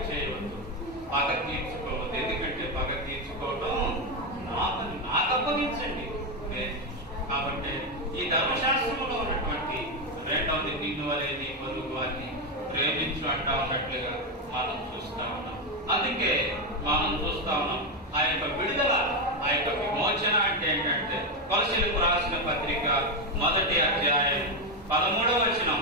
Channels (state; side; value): normal; both; correlation 0.08